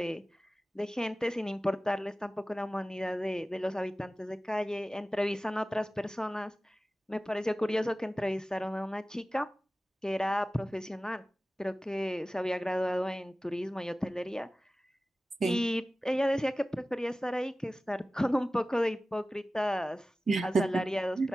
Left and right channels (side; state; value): both; normal; correlation 0.96